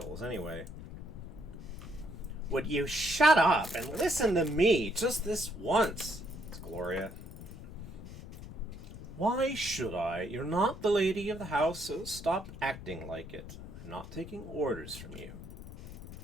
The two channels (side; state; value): left; noise; rumble, 12 dB below the sound